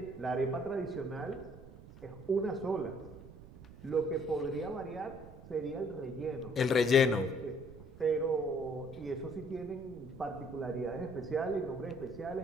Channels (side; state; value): right; noise; rumble, 17 dB below the sound